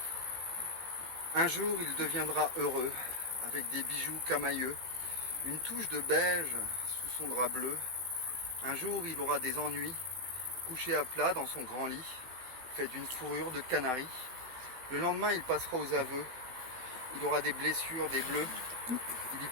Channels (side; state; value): left; late; 16 ms